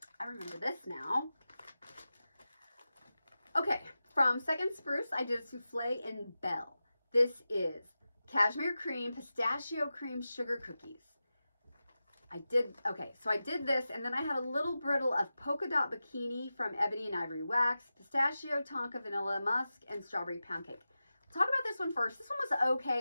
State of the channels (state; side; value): inverted; both; correlation -0.94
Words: I remember this now. Okay. From Second Spruce, I did a souffle in Belle. This is cashmere cream, pistachio cream, sugar cookies. I did this, and then I had a little brittle of polka dot bikini from Ebony and Ivory Wax, pistachio, tonka, vanilla, musk, and strawberry pound cake. Talk about this one first. This one was okay.